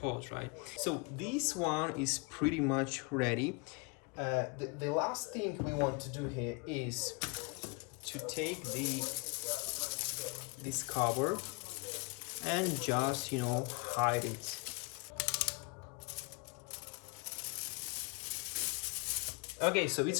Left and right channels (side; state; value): right; quieter; 30.4 dB